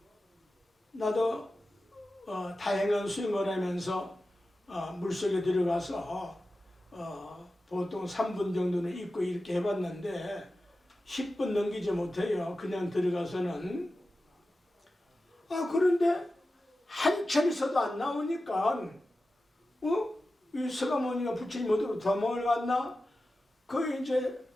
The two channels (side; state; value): both; normal; correlation 0.93